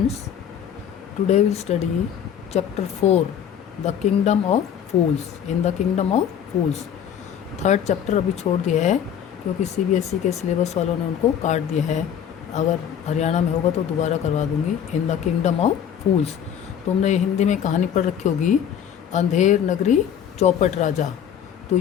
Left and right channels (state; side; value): quieter; right; 8.9 dB